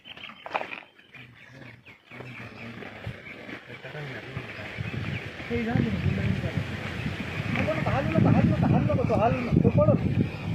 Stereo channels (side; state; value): both; identical; correlation 1.00